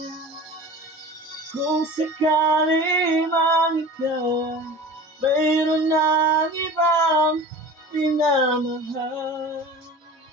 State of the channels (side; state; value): both; normal; correlation 0.38